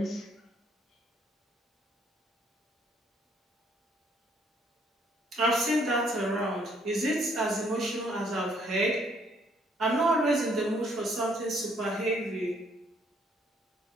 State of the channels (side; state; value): both; normal; correlation 0.66